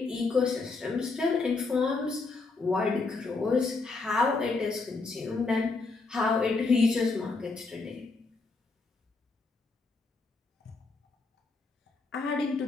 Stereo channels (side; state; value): right; quieter; 3.8 dB